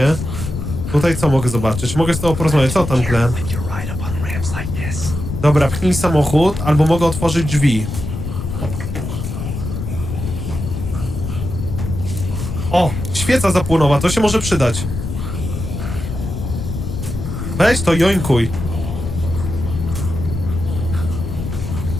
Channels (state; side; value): noise; left; rumble, 5 dB below the sound